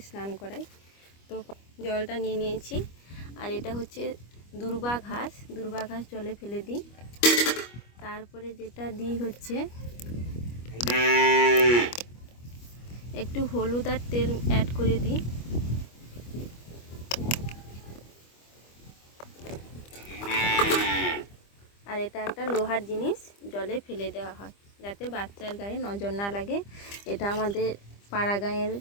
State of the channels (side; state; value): right; late; 25 ms